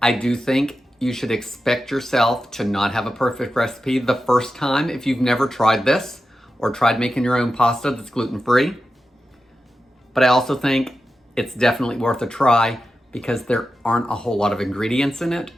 I do think you should expect yourself to not have a perfect recipe the first time if you've never tried this or tried making your own pasta that's gluten-free. But I also think it's definitely worth a try because there aren't a whole lot of ingredients in it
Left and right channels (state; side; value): normal; both; correlation 0.91